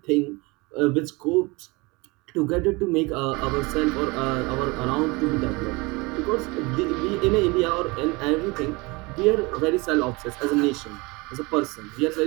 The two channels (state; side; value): quieter; left; 25.5 dB